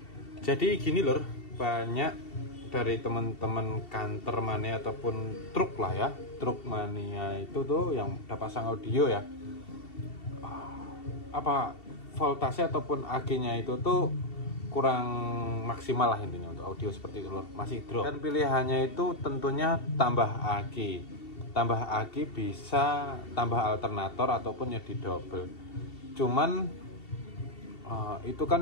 Jadi gini lur, banyak dari teman-teman kantor mania ataupun truk lah ya, truk mania itu tuh yang udah pasang audio ya, apa voltase ataupun AC-nya itu tuh kurang maksimal lah intinya untuk audio seperti itu lor, masih drop. Dan pilihannya itu tentunya tambah AC bisa tambah alternator ataupun ya di double. Cuman itu kan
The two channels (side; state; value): right; late; 2.7 ms